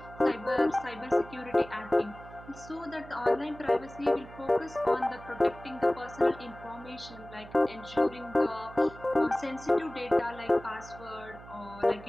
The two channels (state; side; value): noise; right; hum, 17 dB below the sound